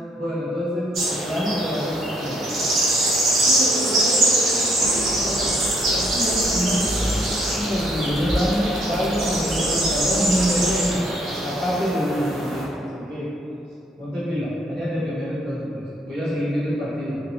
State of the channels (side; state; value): both; normal; correlation 0.68